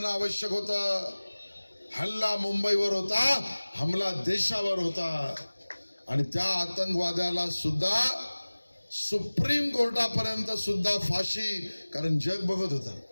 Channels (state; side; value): inverted; both; correlation -1.00